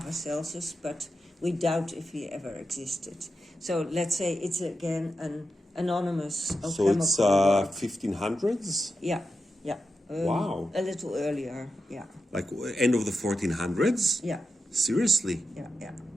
but we doubt if he ever existed. So let's say it's again an anonymous alchemical So work. it's 1500s? Yeah. Wow. A little earlier, yeah. Like end of the 1400s? Yeah. Seriously? Yeah.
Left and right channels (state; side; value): normal; both; correlation 0.89